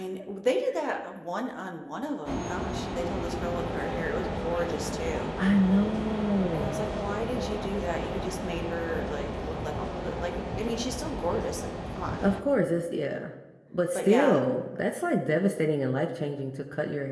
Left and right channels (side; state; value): both; identical; correlation 1.00